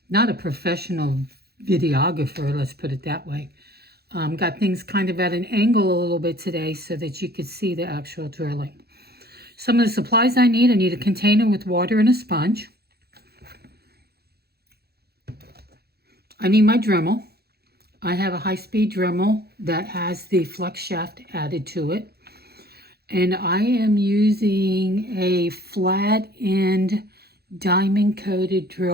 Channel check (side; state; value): left; late; 0.46 ms